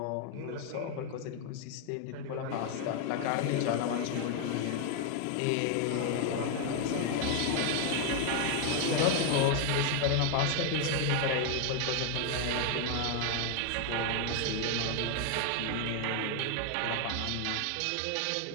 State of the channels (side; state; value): both; different; correlation 0.00